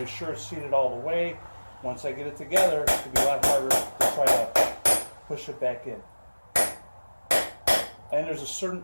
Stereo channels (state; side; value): inverted; both; correlation -1.00